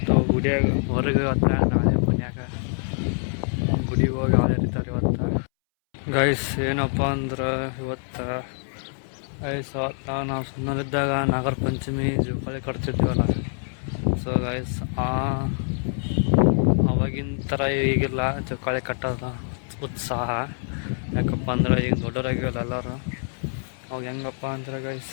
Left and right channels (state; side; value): silent; right; 62 dB below the other